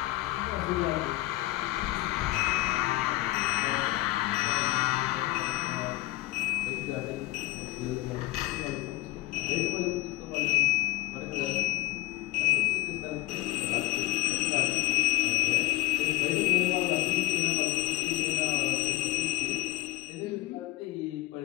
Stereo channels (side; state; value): right; quieter; 17.8 dB